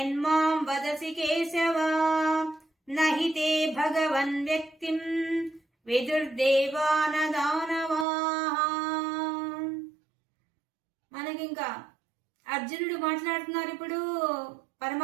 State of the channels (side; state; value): left; drops out; at 8.1 s